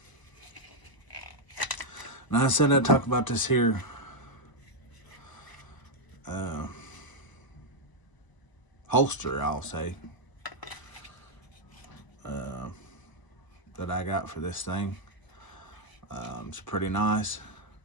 Now I said I'd talk about this here holster, I'll say, that I got for this thing. It's pretty nice.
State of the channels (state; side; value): late; right; 1.0 ms